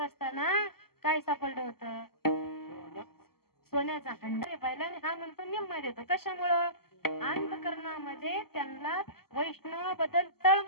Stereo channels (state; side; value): late; right; 0.95 ms